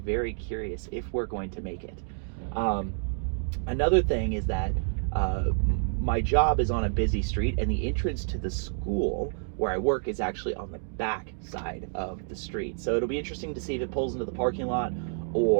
curious if we're going to make it. Another thing is that my job is on a busy street, and the entrance to the school where I work is actually on the back side of the street. So it'll be interesting to see if it pulls into the parking lot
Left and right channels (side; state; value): left; silent; 59 dB below the other